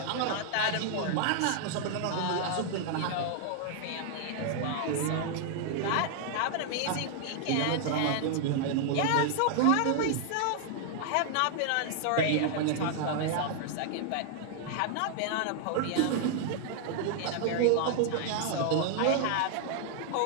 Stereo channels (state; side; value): different; both; correlation 0.00